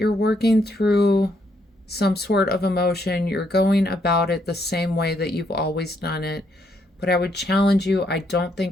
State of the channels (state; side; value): normal; both; correlation 0.74